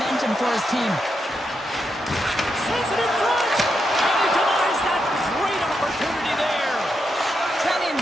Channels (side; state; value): both; normal; correlation 0.84